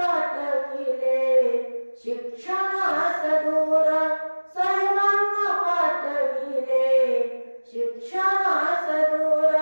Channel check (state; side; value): inverted; both; correlation -1.00